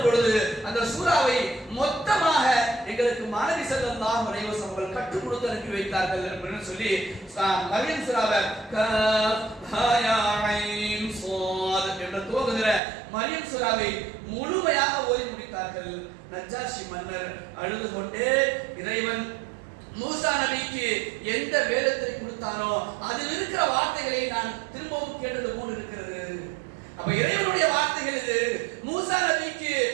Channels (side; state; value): left; drops out; at 12.8 s